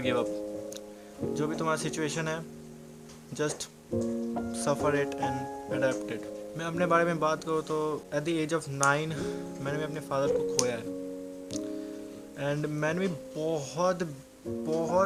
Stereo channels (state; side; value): identical; both; correlation 1.00